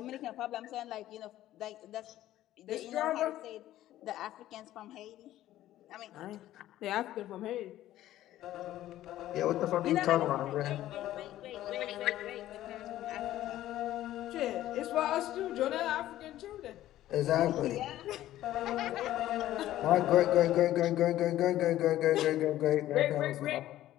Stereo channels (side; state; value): right; quieter; 13.9 dB